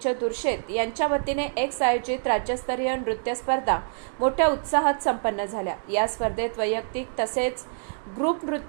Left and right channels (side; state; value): left; silent; digital silence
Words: दुर्शेत यांच्या वतीने एक आयोजित राज्यस्तरीय नृत्य स्पर्धा मोठ्या उत्साहात संपन्न झाल्या। या स्पर्धेत वैयक्तिक तसेच ग्रुप